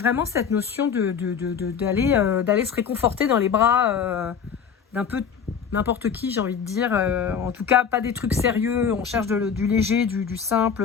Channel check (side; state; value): right; quieter; 7.0 dB